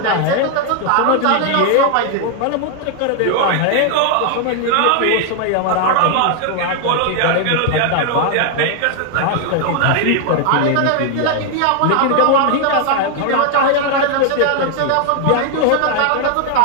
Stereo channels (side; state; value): both; different; correlation 0.00